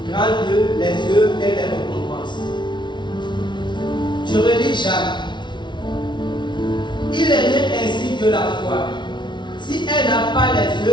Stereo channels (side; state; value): right; late; 0.23 ms